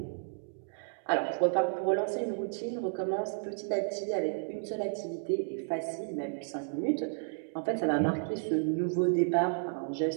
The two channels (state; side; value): silent; left; digital silence